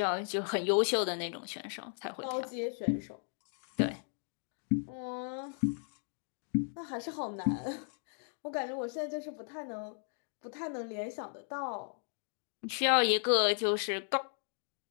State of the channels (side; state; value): right; silent; 54 dB below the other